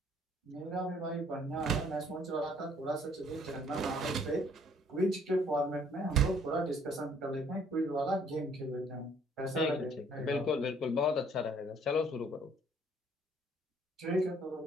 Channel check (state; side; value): normal; both; correlation 0.61